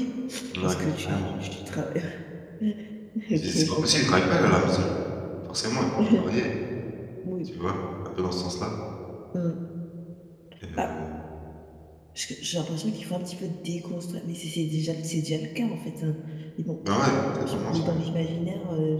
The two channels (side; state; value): both; identical; correlation 1.00